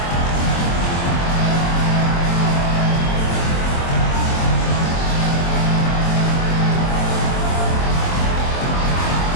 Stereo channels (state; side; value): late; right; 23 ms